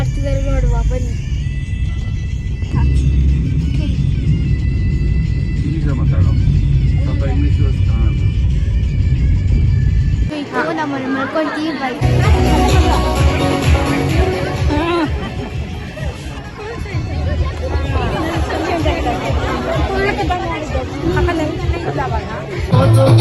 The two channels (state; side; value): identical; both; correlation 1.00